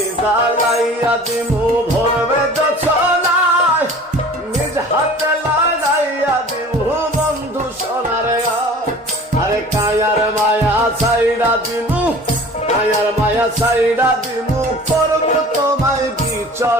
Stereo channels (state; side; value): normal; both; correlation 0.44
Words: জ্বালাইয়া দিমু ভরবে যছনা, নিজ হাতে লাগাইয়া দিমু বন্ধু সোনার গায়। আরে কায়ার মায়া ছাইড়া দিমু, কায়ার মায়া ছাইড়া দিমু, করবো তোমায়